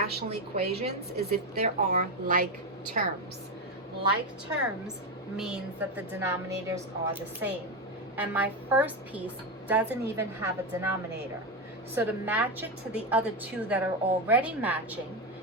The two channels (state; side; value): normal; both; correlation 0.11